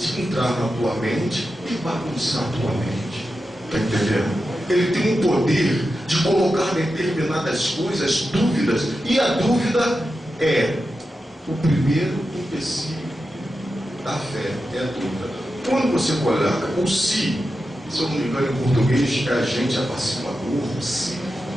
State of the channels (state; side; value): normal; both; correlation 0.90